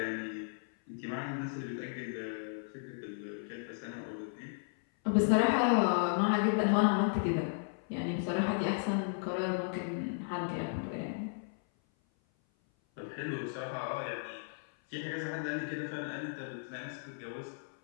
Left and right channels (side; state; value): right; silent; 55 dB below the other